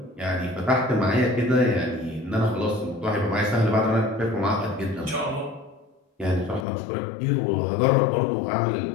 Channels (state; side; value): drops out; right; at 6.7 s